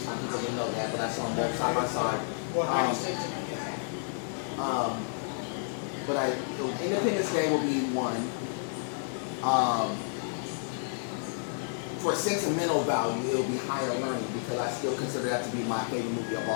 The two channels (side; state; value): right; silent; 57 dB below the other